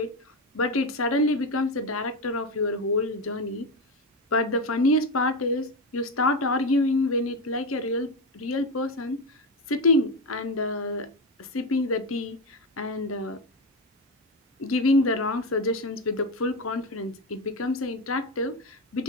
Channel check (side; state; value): both; normal; correlation 0.15